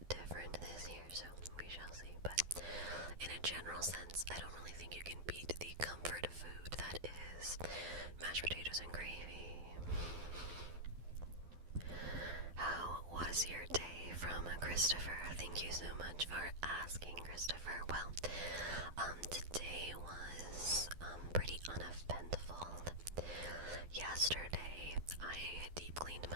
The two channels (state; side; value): late; left; 12 ms